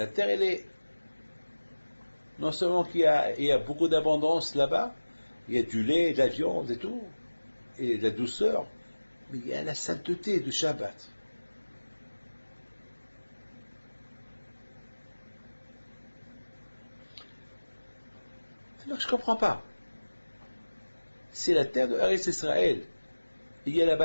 terre, elle est, non seulement qu'il y a beaucoup d'abondance là-bas, il y a du lait, de la viande et tout, et de la douceur, mais il y a la sainteté du Shabbat. Alors je ne comprends pas. C'est la terre de Eretz Israël. Il y a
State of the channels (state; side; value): inverted; both; correlation -1.00